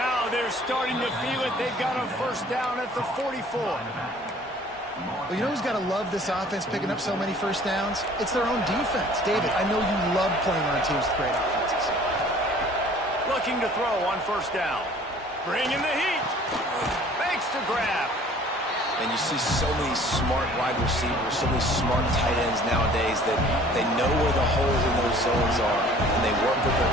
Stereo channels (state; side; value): normal; both; correlation 0.52